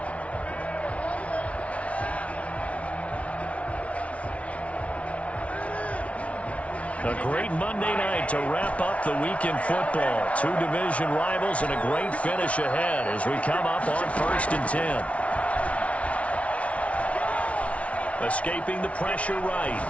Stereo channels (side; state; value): right; late; 0.064 ms